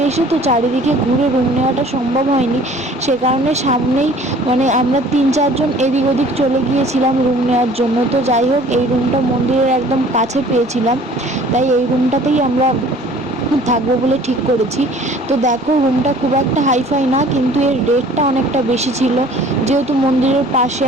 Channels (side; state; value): both; normal; correlation 0.51